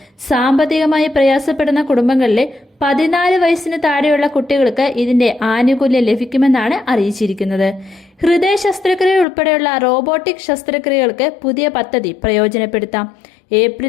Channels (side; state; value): right; drops out; at 9.2 s